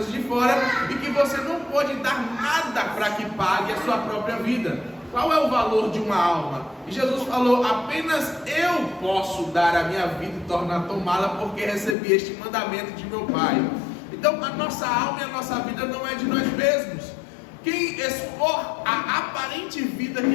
de fora, e que você não pode dar nada para que pague a sua própria vida. Qual é o valor de uma alma? E Jesus falou: apenas eu posso dar a minha vida e tomá-la, porque recebi este mandamento de meu Pai. Então a nossa alma e a nossa vida não é de nós mesmos. Quem expor a aparente vida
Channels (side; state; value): right; drops out; at 12.0 s